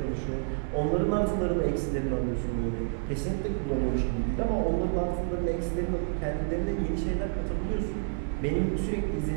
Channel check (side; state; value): left; silent; 59 dB below the other